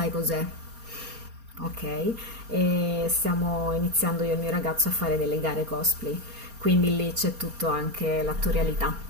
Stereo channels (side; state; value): left; late; 4.3 ms